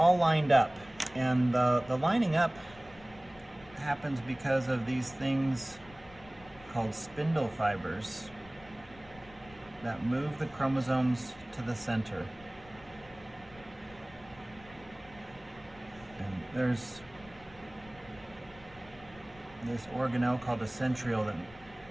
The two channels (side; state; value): left; noise; rumble, 22 dB below the sound